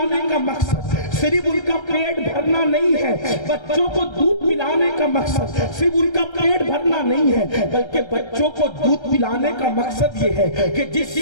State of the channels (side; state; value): right; late; 1.3 ms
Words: کا مقصد صرف ان کا پیٹ بھرنا نہیں ہے، بچوں کو دودھ پلانے کا مقصد صرف ان کا پیٹ بھرنا نہیں ہے، بلکہ بچوں کو دودھ پلانے کا مقصد یہ ہے کہ جس